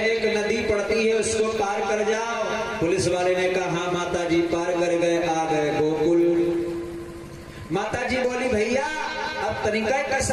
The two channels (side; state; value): both; identical; correlation 1.00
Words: नदी पड़ती है उसको पार कर जाओ। पुलिस वाले ने कहा हाँ माता जी पार कर गए, आ गए गोकुल। माता जी बोली भैया अब तनिका